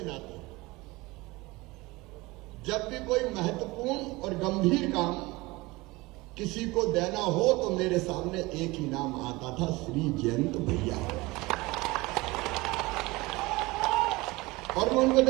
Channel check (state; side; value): quieter; left; 22.1 dB